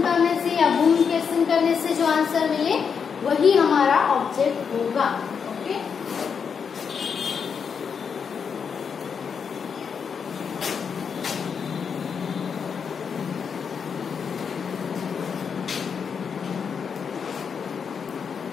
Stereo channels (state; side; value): quieter; right; 6.5 dB